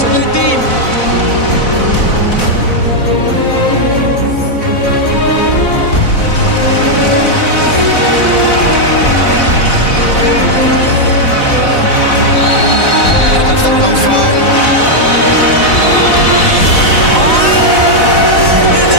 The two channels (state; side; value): late; right; 4.0 ms